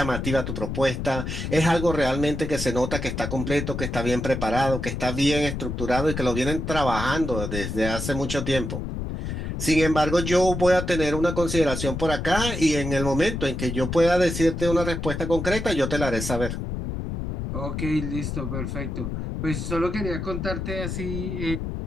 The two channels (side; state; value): left; noise; rumble, 4 dB below the sound